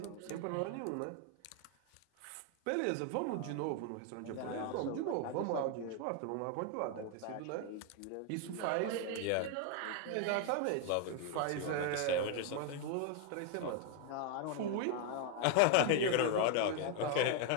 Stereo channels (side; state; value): both; different; correlation 0.01